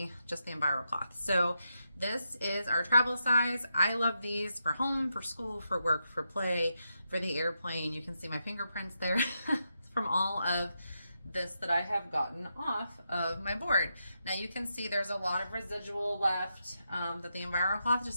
just the EnviroCloth. So this is our travel size. I love these for home, for school, for work, for play, for the airplane. You can see my fingerprints there from all of this that I have gotten off of my board. Now you can see there's a lot of residual left that the EnviroCloth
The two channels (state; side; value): inverted; both; correlation -0.85